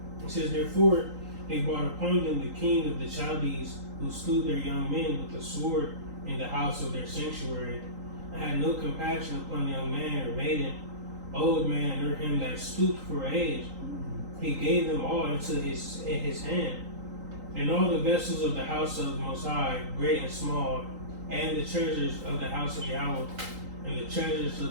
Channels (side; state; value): left; late; 3.8 ms